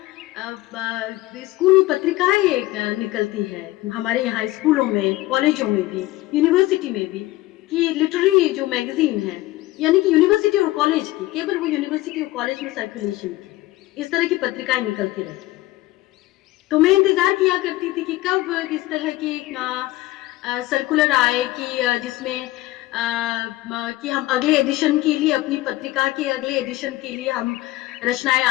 पत्रिकाएँ निकलती है हमारे यहाँ स्कूलों में, कॉलेजों में भी, यूनिवर्सिटी में भी, कि लिटरेरी जो मैगज़ीन है, यानी कि यूनिवर्सिटी और कॉलेज की, केवल वो यूनिवर्सिटी और कॉलेज में सर्कुलेशन की, इस तरह की पत्रिकाएँ निकलती रहती। तो मैं इंतज़ार किया करती थी कि कब इस तरह की सर्कुलर आए कि जिसमें कि हम अगले एडिशन के लिए, अपनी पत्रिका के अगले एडिशन के लिए हम रचनाएँ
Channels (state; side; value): quieter; right; 17.8 dB